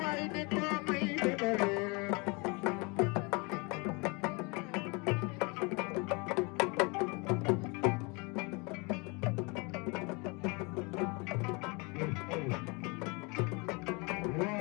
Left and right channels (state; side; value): quieter; right; 29.6 dB